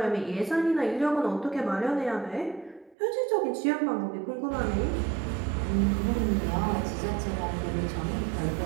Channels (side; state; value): left; drops out; at 3.0 s